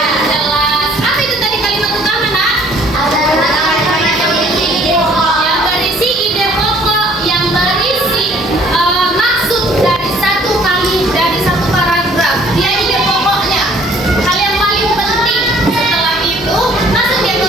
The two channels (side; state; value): both; normal; correlation 0.57